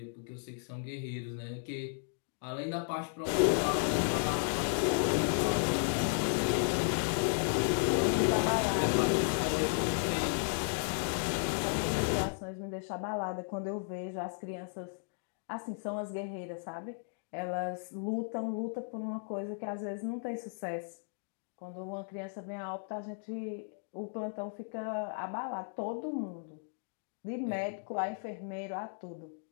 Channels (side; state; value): right; silent; digital silence